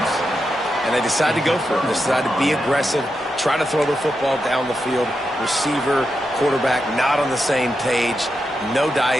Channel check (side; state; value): both; normal; correlation 0.87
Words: And they decide to go for it. They decide to be aggressive, try to throw the football down the field. Receiver, quarterback, not on the same page. No